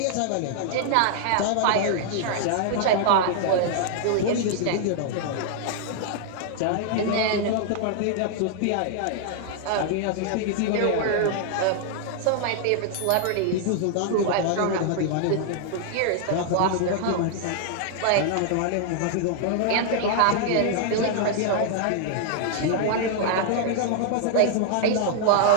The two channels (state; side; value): different; both; correlation 0.00